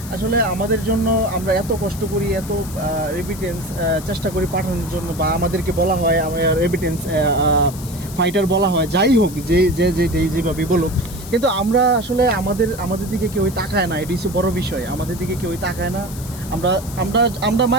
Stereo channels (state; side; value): noise; left; hiss, 15 dB below the sound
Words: আসলে আমাদের জন্য আমরা এত কষ্ট করি, এত রেমিটেন্স চেষ্টা করি পাঠানোর জন্য, বা আমাদেরকে বলা হয় রেমিটেন্স ফাইটার বলা হয়। যাই হোক, যেভাবে বলুক, কিন্তু আমরা আসলে আমাদের দিকে কেউই তাকায় না। এটি হচ্ছে বড় বিষয়, আমাদের দিকে কেউই তাকায় না। আমরা